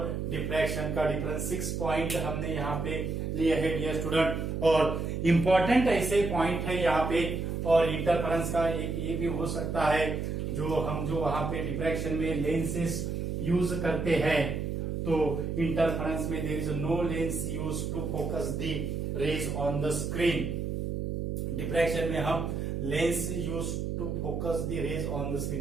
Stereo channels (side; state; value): right; noise; hum, 2 dB below the sound